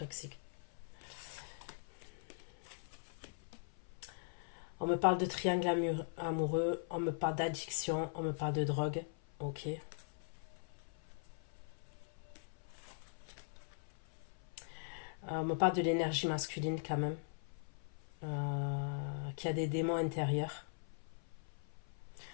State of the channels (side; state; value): right; silent; 50 dB below the other